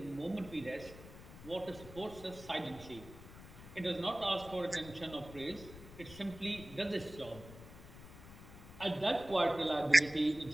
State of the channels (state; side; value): noise; left; rumble, 16 dB below the sound